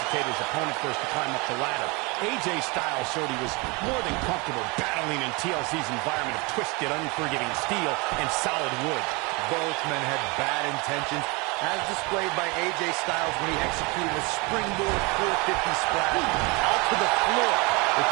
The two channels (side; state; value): left; quieter; 27.7 dB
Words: his opponent first to climb up the ladder. AJ Styles showed he was more than comfortable battling in TLC's environment of twisted, unforgiving steel and solid wood. Both men had bad intentions, as displayed by AJ Styles when he executed a springboard 450 splash out to the floor